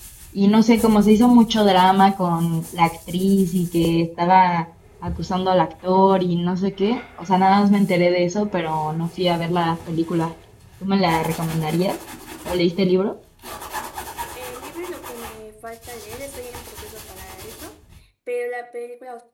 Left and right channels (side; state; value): both; identical; correlation 1.00